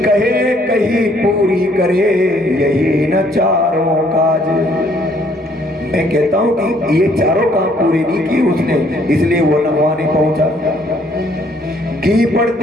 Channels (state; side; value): normal; both; correlation 0.64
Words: कहे कहीं पूरी करे यही न चारों काज। मैं कहता हूं कि ये चारों काम पूरे नहीं किए उसने, इसलिए वो वहां नहीं पहुंचा। घी